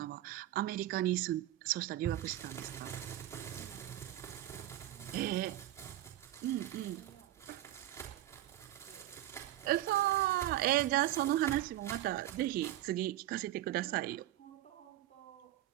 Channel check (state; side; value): quieter; left; 14.0 dB